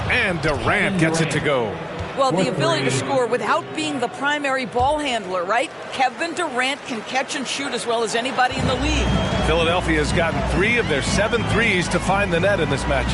And Durant gets it to go. Well, the ability to score without being the primary ball handler, right? Kevin Durant can catch and shoot as well as anybody in the league. Philadelphia has gotten 3 of their 7 threes to find the net in this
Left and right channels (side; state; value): both; identical; correlation 1.00